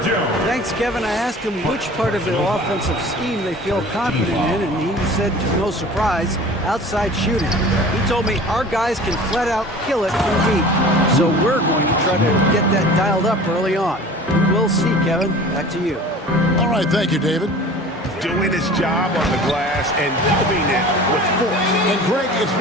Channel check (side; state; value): both; normal; correlation 0.42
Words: Thanks, Kevin. I asked him which part of the offensive scheme they feel confident in, and he said, to no surprise, outside shooting. He told me our guys can flat out kill it from deep, so we're going to try to get that dialed up early on. We'll see, Kevin. Back to you. All right, thank you, David. Doing his job on the glass and doing it with force. And Greg, it's